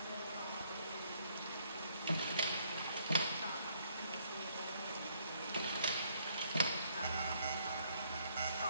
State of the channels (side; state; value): both; inverted; correlation -0.67